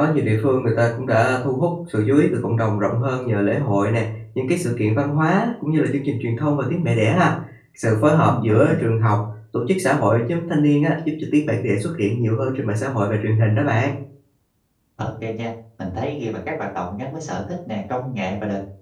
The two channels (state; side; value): identical; both; correlation 1.00